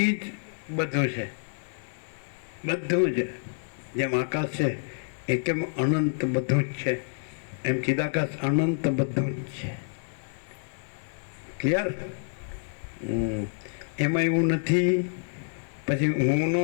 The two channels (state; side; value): silent; right; digital silence